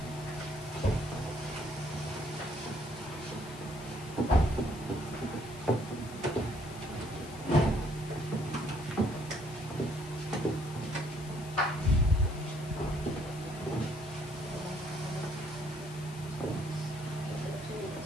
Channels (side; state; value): left; noise; hiss, 17 dB below the sound